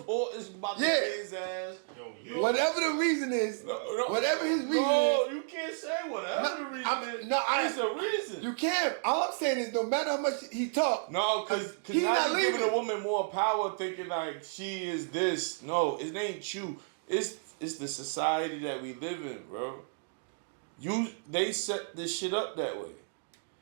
is about to pay his ass. Whatever the reason is, whatever his reason is. No, you can't say whatever the reason is. It's a reason. You can't. All I'm saying is no matter how much he talk. No, because now you're giving a woman more power thinking like she is this. No, it ain't you. It's the society that we live in, bro. They set this shit up that way.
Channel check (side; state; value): left; silent; digital silence